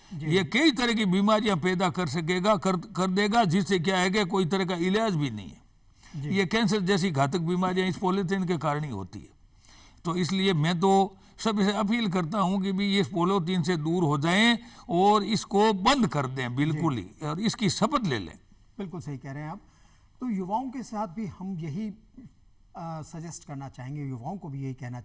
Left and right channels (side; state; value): both; identical; correlation 1.00